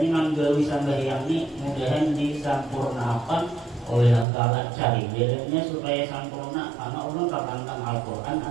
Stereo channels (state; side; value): drops out; left; at 4.2 s